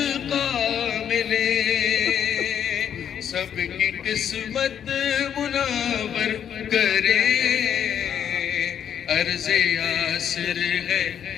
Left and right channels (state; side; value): quieter; right; 8.9 dB